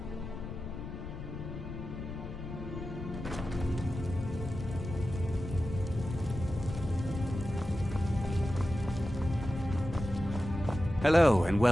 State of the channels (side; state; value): left; noise; rumble, 8 dB below the sound